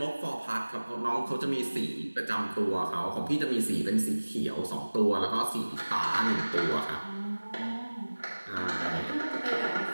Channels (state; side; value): inverted; both; correlation -1.00